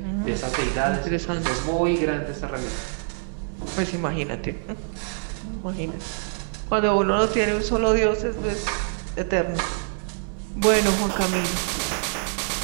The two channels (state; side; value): silent; left; 62 dB below the other